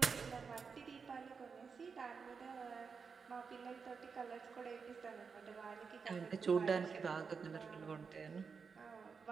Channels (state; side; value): quieter; left; 5.5 dB